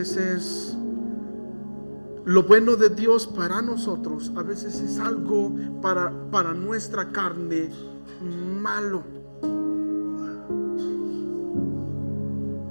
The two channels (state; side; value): inverted; both; correlation -1.00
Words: es lo bueno de Dios para nosotros, a veces es algo para nuestra carne malo.